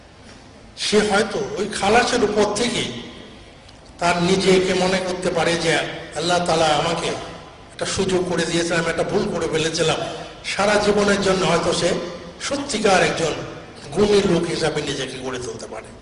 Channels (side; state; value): both; identical; correlation 1.00